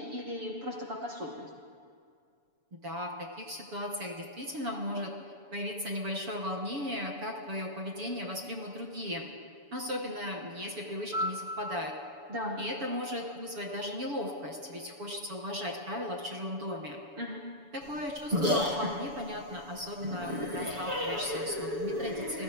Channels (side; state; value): left; late; 7.0 ms